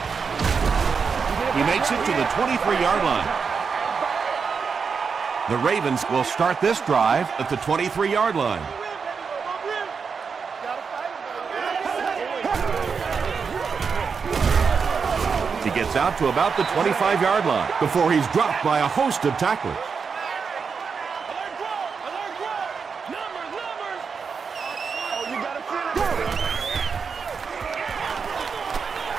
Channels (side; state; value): left; quieter; 5.7 dB